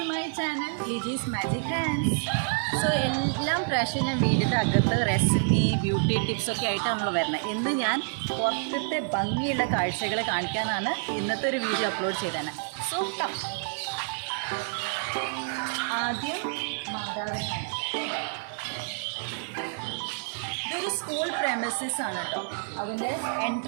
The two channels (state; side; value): silent; left; 59 dB below the other